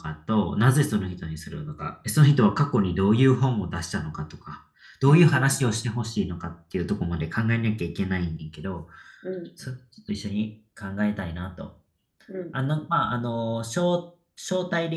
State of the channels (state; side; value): identical; both; correlation 1.00